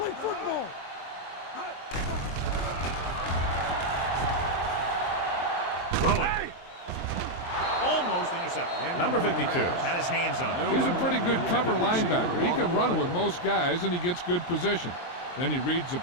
Throwing. Almost intercepted. Number 52 had his hands on it. He's a pretty good cover linebacker. He can run with most guys, and he gets good position. Then he reads the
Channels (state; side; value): late; right; 23 ms